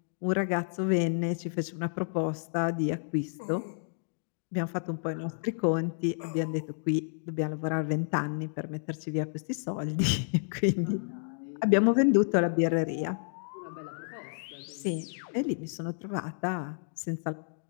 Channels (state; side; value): silent; right; digital silence